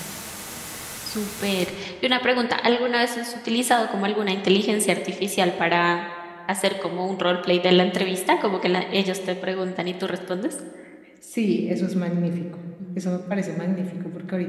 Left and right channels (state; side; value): identical; both; correlation 1.00